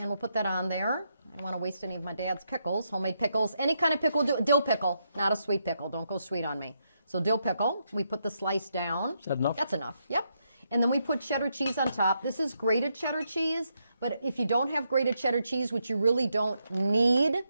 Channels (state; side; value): inverted; both; correlation -0.80